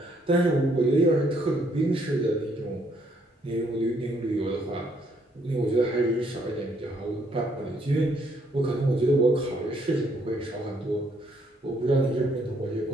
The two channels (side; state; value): both; normal; correlation 0.69